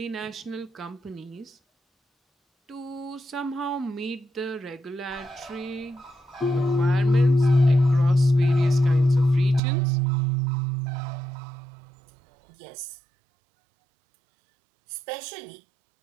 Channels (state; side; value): drops out; left; at 9.6 s